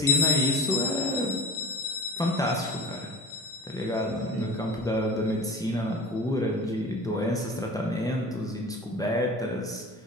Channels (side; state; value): both; normal; correlation 0.37